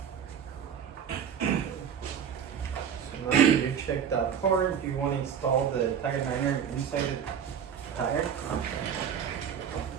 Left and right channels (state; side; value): quieter; left; 8.0 dB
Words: Now you check that part, you want to install the tire liner inside the tire.